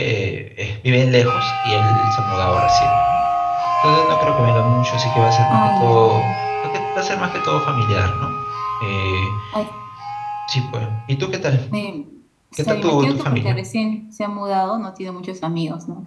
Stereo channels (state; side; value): identical; both; correlation 1.00